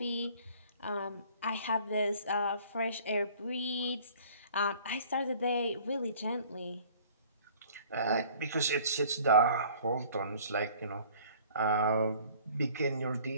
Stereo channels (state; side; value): inverted; both; correlation -0.52